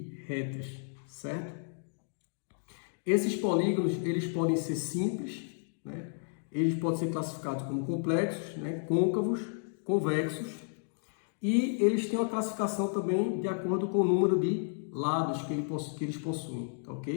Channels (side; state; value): right; silent; digital silence